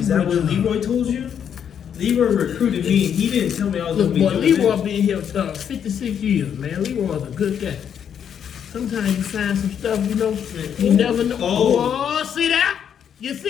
that what Leroy told you? Leroy recruited me, and he didn't tell me I was Look, going to be boy, doing Leroy this. been here 56 years, man. Leroy's a good guy. Sometimes you find some stuff, you know, you never know. Oh. Oh, see that? You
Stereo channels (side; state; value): right; quieter; 8.4 dB